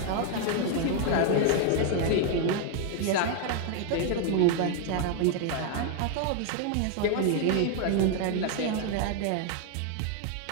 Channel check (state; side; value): different; both; correlation 0.00